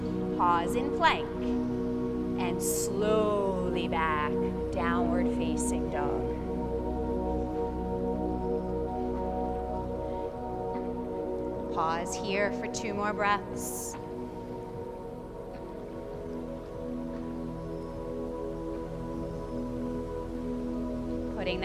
Pause in plank. And slowly back, downward facing dog. Pause here for 2 more breaths. Putting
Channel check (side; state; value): both; identical; correlation 1.00